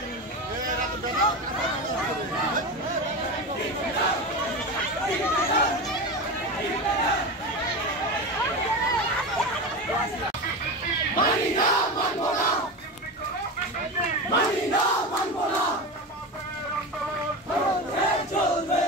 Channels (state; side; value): normal; both; correlation 0.23